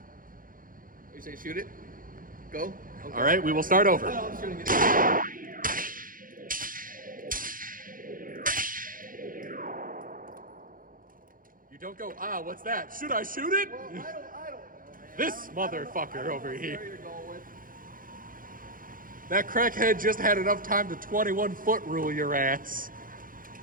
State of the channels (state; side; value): late; left; 0.40 ms